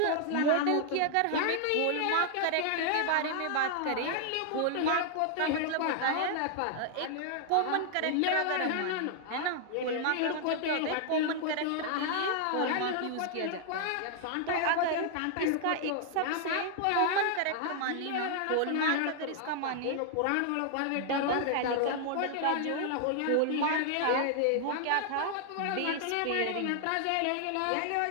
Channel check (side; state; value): both; different; correlation 0.00